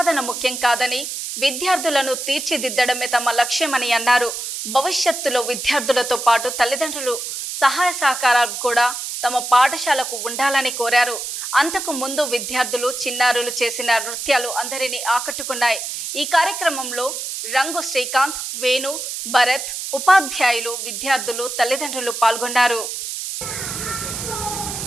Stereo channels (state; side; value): noise; right; hiss, 6 dB below the sound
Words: ముఖ్యం కాదని, విద్యార్థులను తీర్చిదిద్దడమే తమ లక్ష్యమని అన్నారు. భవిష్యత్తులో విద్యార్థులతో పాటు తల్లిదండ్రులు సహాయ సహకారాలు కూడా తమ పాఠశాలకు ఉండాలని కోరారు. అంతకు ముందు విద్యార్థులు చిన్నారులు చేసిన నృత్యాలు అందరినీ ఆకట్టుకున్నాయి. ఈ కార్యక్రమంలో రంగు శ్రీకాంత్, వేణు, భరత్, ఉపాధ్యాయులు, విద్యార్థులు, తల్లిదండ్రులు పాల్గొన్నారు.